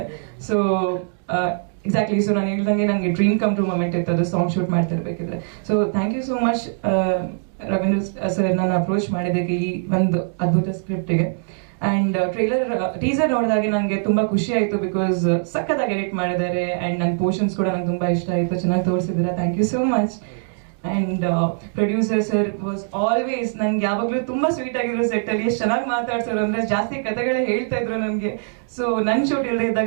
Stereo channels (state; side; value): silent; left; digital silence